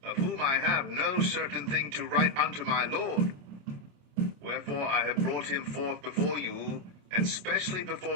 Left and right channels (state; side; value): late; left; 27 ms